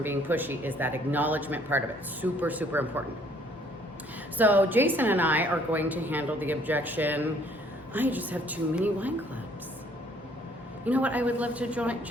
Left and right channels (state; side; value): normal; both; correlation 0.62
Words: being pushy, is that acknowledgement part of it. Super, super important. So Jason and I are going to handle the objection, I just have too many wine clubs. You know what, I would love to join.